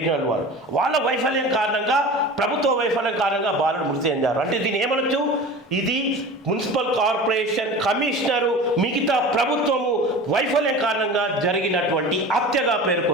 వాళ్ళు, వాళ్ళ వైఫల్యం కారణంగా, ప్రభుత్వ వైఫల్యం కారణంగా బాలుడు మృతి చెందారు. అంటే దీన్ని ఏమనొచ్చు? ఇది మున్సిపల్ కార్పొరేషన్ కమిషనరు, మిగతా ప్రభుత్వము వైఫల్యం కారణంగా జరిగినటువంటి హత్యగా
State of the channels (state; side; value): normal; both; correlation 0.35